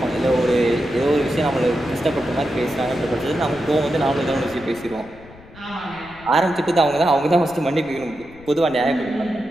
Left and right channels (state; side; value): noise; left; rumble, 22 dB below the sound